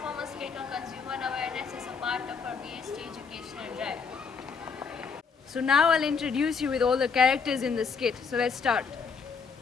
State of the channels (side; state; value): right; quieter; 5.5 dB